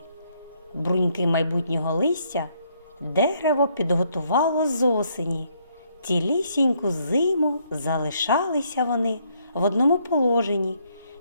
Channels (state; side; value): inverted; both; correlation -0.71